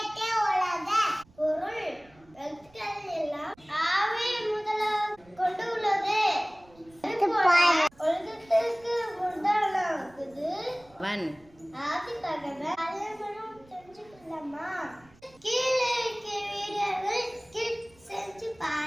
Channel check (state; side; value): noise; right; rumble, 28 dB below the sound